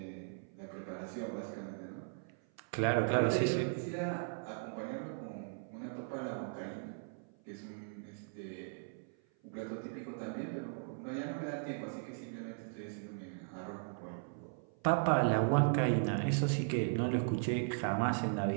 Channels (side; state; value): left; silent; 53 dB below the other